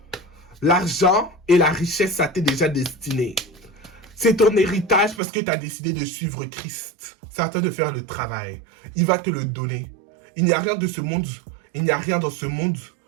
L'argent et la richesse, ça t'est déjà destiné. C'est ton héritage parce que tu as décidé de suivre Christ. C'est à toi de faire le travail. Il va te le donner. Il n'y a rien de ce monde, il n'y a rien dans ce monde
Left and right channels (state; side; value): drops out; left; at 5.2 s